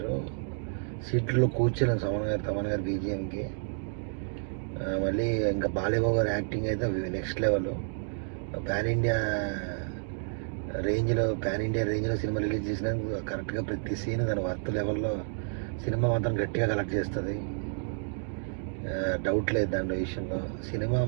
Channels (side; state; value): left; silent; digital silence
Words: సీట్లో కూర్చోలేను తమన్ గారు బీజిఎంకి. మళ్ళీ ఇంకా బాలయ్య బాబు గారి యాక్టింగ్ అయితే నెక్స్ట్ లెవెల్. పాన్ ఇండియా రేంజ్లో సినిమా రిలీజ్ చేసినందుకు కరెక్ట్గా ప్రతి సీన్ దాని వర్త్ లెవెల్లో సినిమా మాత్రం గట్టిగా కలెక్ట్ చేస్తుంది. డౌట్ లేదు దాని విషయంలో. సినిమా